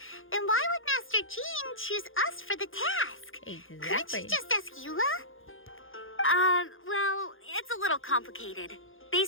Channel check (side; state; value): right; late; 0.59 ms